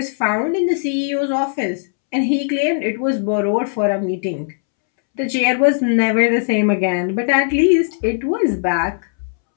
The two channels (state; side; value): silent; right; 67 dB below the other